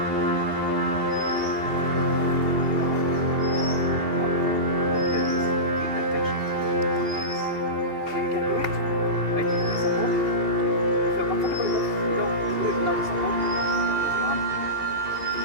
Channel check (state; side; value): late; left; 2.8 ms